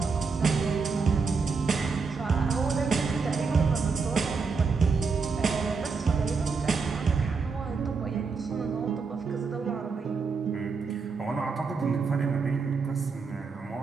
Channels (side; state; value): left; quieter; 4.8 dB